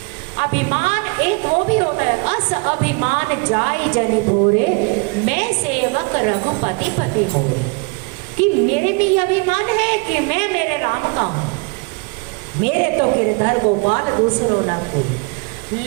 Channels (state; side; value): quieter; left; 31.6 dB